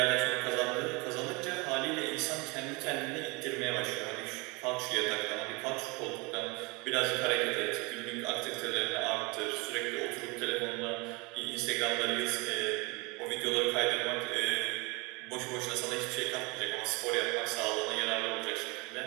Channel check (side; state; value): left; quieter; 27.6 dB